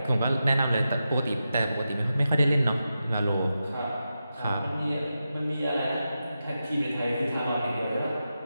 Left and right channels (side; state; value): both; inverted; correlation -0.90